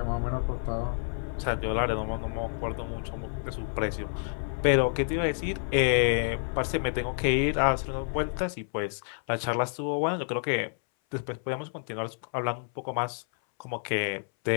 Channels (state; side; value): silent; right; 58 dB below the other